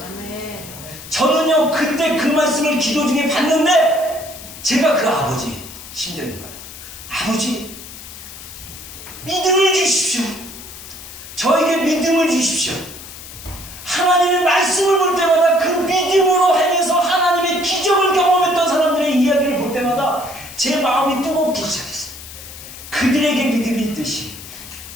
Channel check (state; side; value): noise; left; hiss, 14 dB below the sound